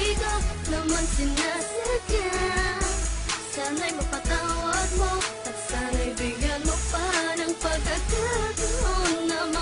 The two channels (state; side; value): identical; both; correlation 1.00